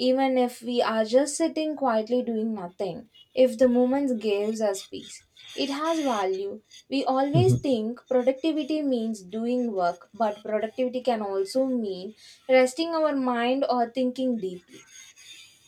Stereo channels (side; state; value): both; identical; correlation 1.00